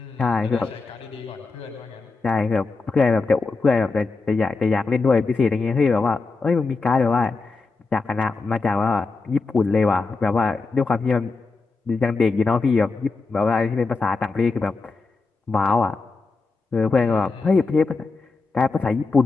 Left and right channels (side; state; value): right; quieter; 4.1 dB